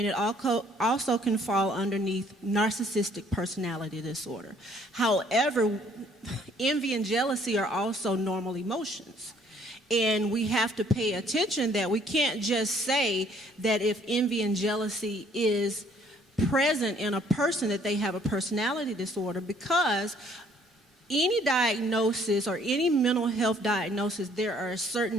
it also can fall underneath narcissistic personality disorder. However, envy and jealousy are also normal emotions. And we have to pay attention that we can't just say that if envy and jealousy is present in a person that they have a personality disorder, because any diagnosis or any mental health diagnosis, there are a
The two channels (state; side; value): normal; both; correlation 0.61